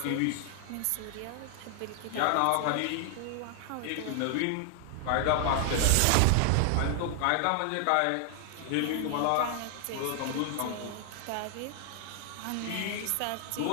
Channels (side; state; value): both; different; correlation 0.00